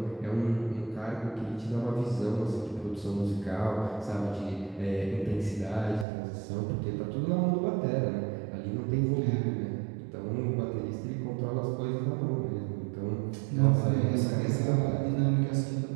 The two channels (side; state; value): left; drops out; at 6.1 s